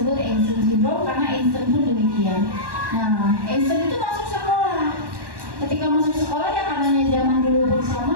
Einstein syndrome karena Einstein pun demikian. Nah, Einstein itu masuk sekolah. Ketika masuk sekolah ya karenanya zaman dulu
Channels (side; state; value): left; late; 1.1 ms